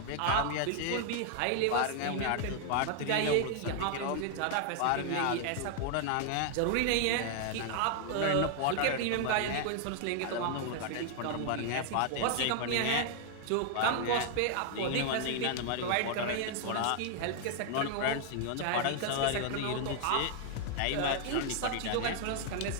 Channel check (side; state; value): both; different; correlation 0.00